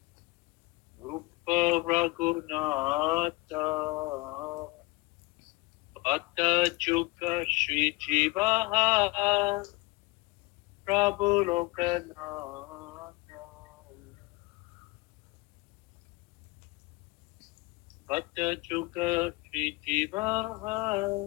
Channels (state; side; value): quieter; right; 22.9 dB